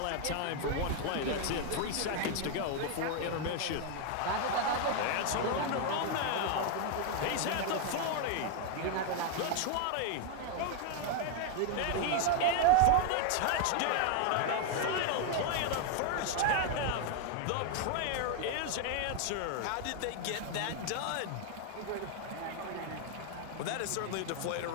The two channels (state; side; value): different; both; correlation 0.00